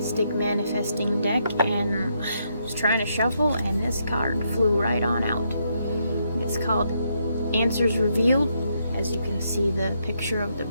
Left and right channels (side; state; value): both; inverted; correlation -0.77